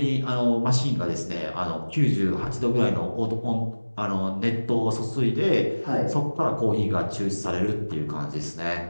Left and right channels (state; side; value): inverted; both; correlation -1.00